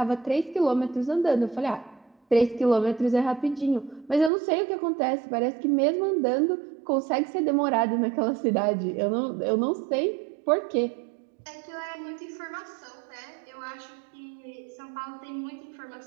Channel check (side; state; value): left; drops out; at 4.3 s